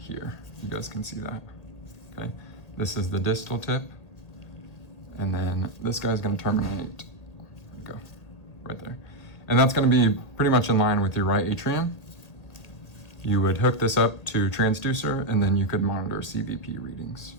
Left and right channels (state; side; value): late; right; 2.0 ms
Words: You guys can see that, okay? This is the distal tip. and then this guy's going to terminate. There we go, right there. And that's going to be pretty much in line with your right atrium. You would hook this up to a transducer, and then you could monitor CVP readings,